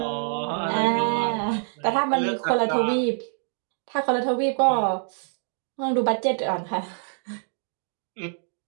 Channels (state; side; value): silent; left; 61 dB below the other